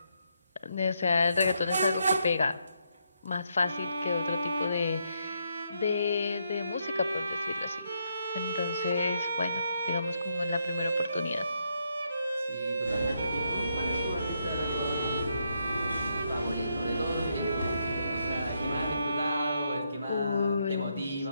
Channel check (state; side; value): inverted; both; correlation -0.78